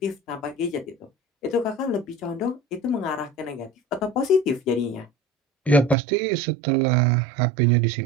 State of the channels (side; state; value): left; drops out; at 6.0 s